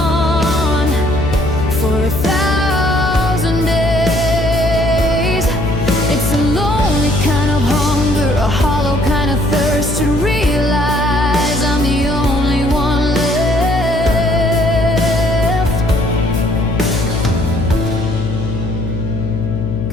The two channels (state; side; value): noise; left; hum, 4 dB below the sound